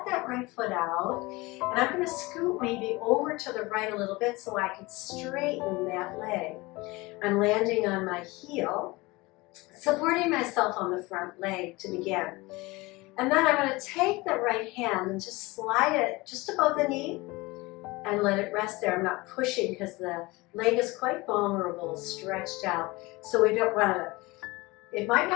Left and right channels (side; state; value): right; quieter; 22.6 dB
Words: that right foot out. And I'm going to scoot maybe over to the right a little bit so I can straighten that leg. I'm landing on my heel, supporting myself on the front leg to begin. And then I'm going to take that right hand and just slide it just above the knee and let it rest there. I'm not pushing because the leg is quite vulnerable, stretched out. So we don't want to, it might